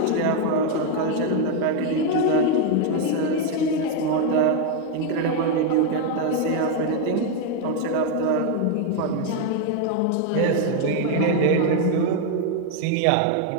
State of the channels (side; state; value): both; different; correlation 0.01